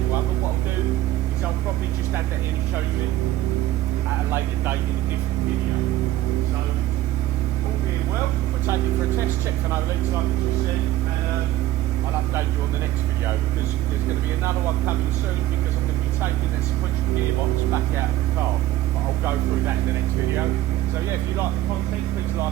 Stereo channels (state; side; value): quieter; left; 14.7 dB